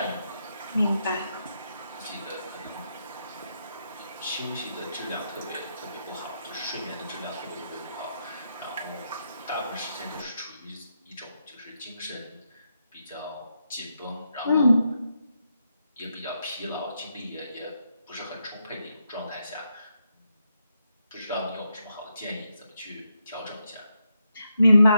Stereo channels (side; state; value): both; inverted; correlation -0.82